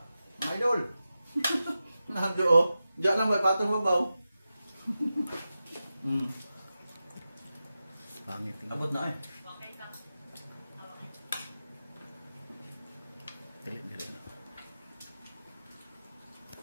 Mga idol. Nando oh. Diyan lang ba patong sa babaw. Pangit. Abot na eh.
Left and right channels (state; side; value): inverted; both; correlation -0.92